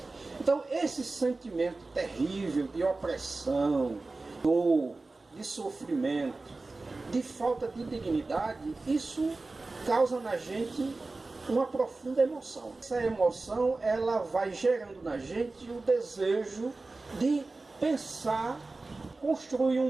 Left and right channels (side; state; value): left; quieter; 3.4 dB